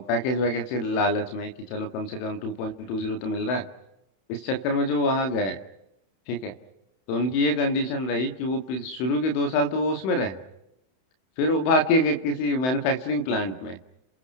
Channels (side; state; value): right; late; 31 ms